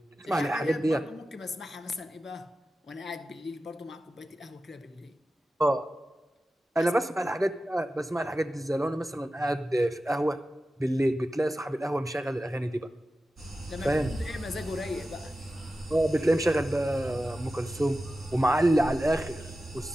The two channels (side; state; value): both; normal; correlation 0.93